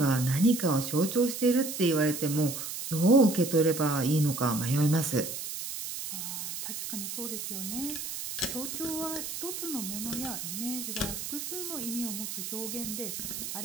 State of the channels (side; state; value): right; noise; hiss, 6 dB below the sound